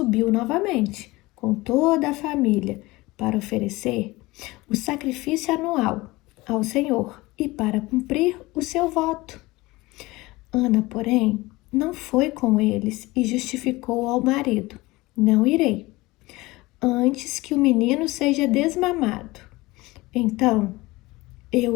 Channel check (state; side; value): quieter; right; 20.8 dB